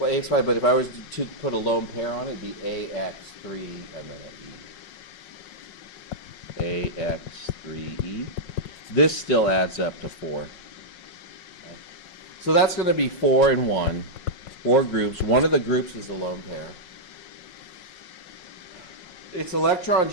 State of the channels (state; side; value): late; right; 5.5 ms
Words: AX5, but if I was to put a lone pair on it, it'd be AX3 and then an E. AX3E. This still adds up to 4. Okay. So that's going to be 4 and 1. 4 groups. One of the groups is the lone pair. Its electron